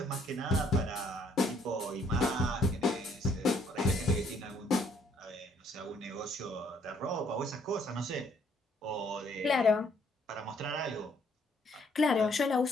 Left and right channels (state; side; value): normal; both; correlation 0.65